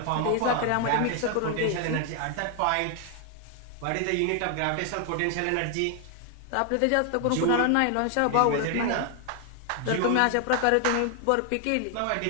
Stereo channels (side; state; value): both; different; correlation 0.00